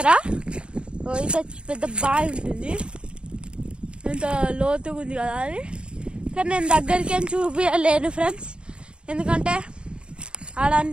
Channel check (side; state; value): left; late; 0.055 ms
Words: ఇంత పెద్ద బావి ఉంటుంది, ఇంత లోతుగా ఉంది కదా అది. కానీ నేను దగ్గరికి ఏం చూపించలేను ఫ్రెండ్స్, ఎందుకంటే